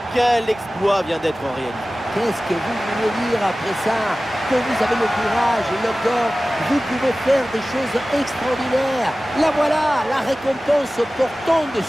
Quel exploit vient d'être réalisé. qu'est-ce que vous voulez dire après ça? Que vous avez le courage et le corps, vous pouvez faire des choses extraordinaires. La voilà, la récompense portant de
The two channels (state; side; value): normal; both; correlation 0.97